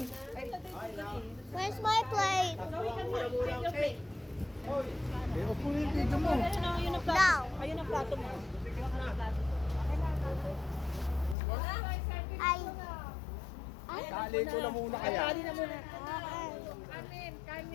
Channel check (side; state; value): right; drops out; at 11.4 s